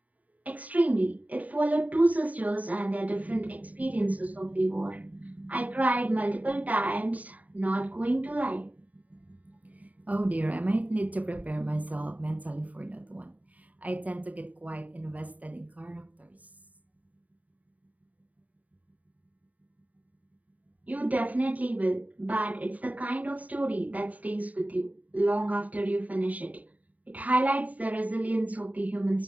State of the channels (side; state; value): left; late; 0.073 ms